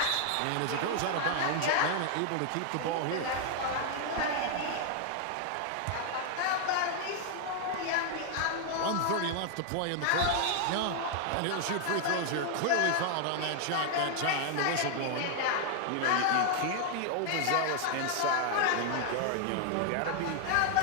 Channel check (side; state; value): both; different; correlation 0.00